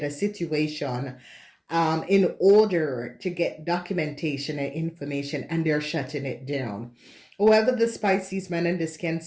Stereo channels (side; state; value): both; identical; correlation 1.00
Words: a situation in order to get documentation and information, and they're shutting it down. Whoever this Pisces man and this